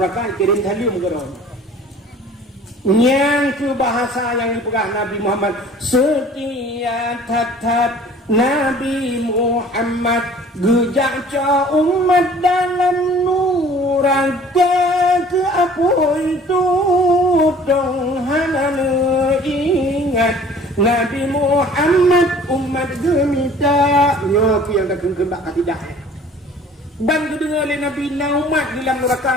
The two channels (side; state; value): both; normal; correlation 0.50